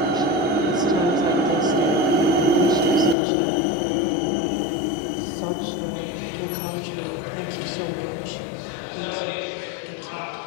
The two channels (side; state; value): right; drops out; at 3.2 s